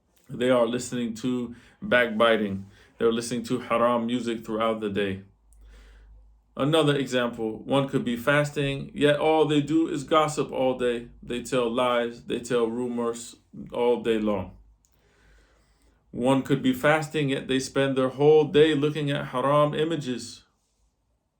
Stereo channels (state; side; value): identical; both; correlation 1.00